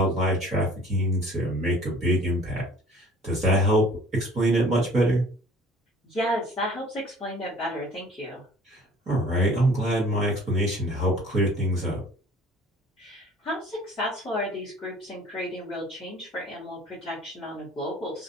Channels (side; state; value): both; normal; correlation 0.51